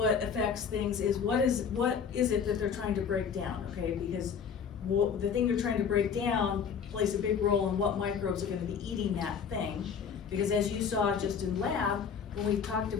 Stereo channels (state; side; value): quieter; right; 6.8 dB